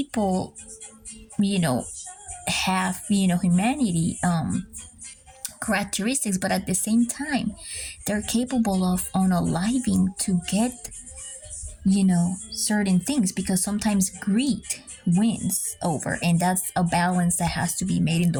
have humanity characteristics, but at the same time they're capable of unaliving to get certain things, because sometimes greed wins over, and that's a balance that has to be made in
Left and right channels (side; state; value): both; identical; correlation 1.00